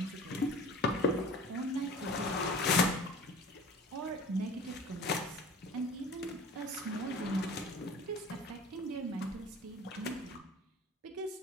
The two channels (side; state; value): both; normal; correlation 0.42